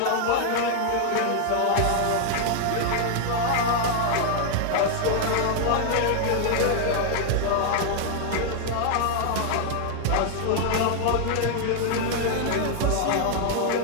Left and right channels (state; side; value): different; both; correlation 0.00